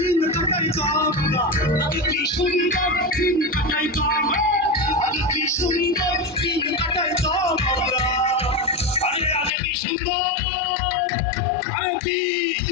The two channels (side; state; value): right; drops out; at 9.5 s